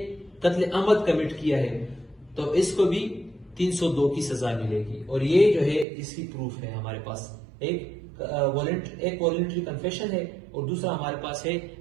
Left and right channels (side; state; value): left; drops out; at 5.9 s